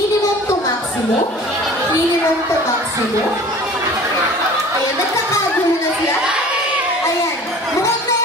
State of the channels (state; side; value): normal; both; correlation 0.44